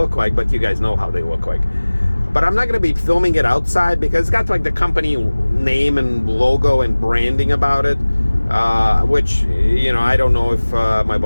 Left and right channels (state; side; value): inverted; both; correlation -1.00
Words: like, but you guys know how they look like. But I'm not going to be filming it outside because it's got like the company name and logo and branding about it, which, you know, I don't know if my